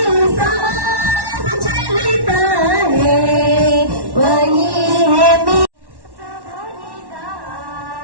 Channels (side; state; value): left; late; 1.1 ms